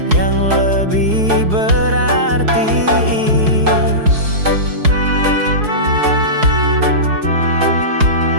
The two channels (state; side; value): late; left; 4.7 ms